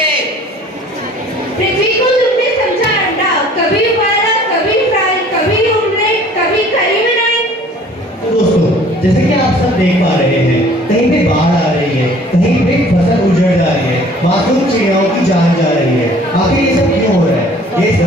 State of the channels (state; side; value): normal; both; correlation 0.52